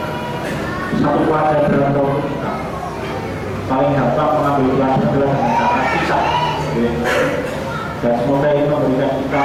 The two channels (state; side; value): identical; both; correlation 1.00